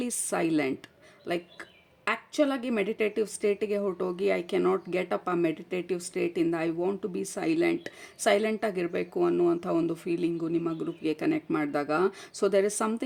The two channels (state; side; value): identical; both; correlation 1.00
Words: silent. Like ಆ್ಯಕ್ಚುಲಾಗಿ ಮೆಡಿಟೇಟಿವ್ ಸ್ಟೇಟಿಗೆ ಹೊರಟೋಗಿ ಐ ಕೆನಾಟ್ ಗೆಟ್ ಅಪ್ ಆ ಮೆಡಿಟೇಟಿವ್ ಸ್ಟೇಟಿಂದ ಐ ವಾಂಟ್ ಟು ಬಿ ಸೈಲೆಂಟಾಗಿರಬೇಕು ಅನ್ನುವಂಥ ಒಂದು ಫೀಲಿಂಗು ನಿಮ್ಮ ಗ್ರೂಪ್ಗೆ ಕನೆಕ್ಟ್ ಮಾಡಿದಾಗ. So there is